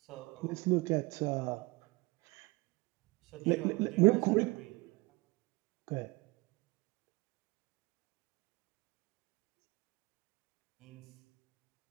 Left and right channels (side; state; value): left; quieter; 25.0 dB